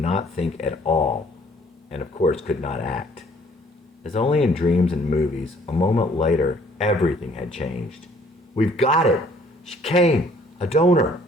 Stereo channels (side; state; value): both; normal; correlation 0.59